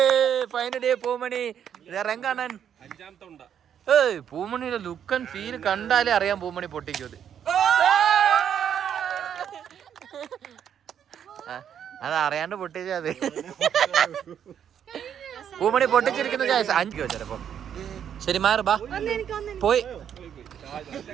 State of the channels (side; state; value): left; quieter; 8.9 dB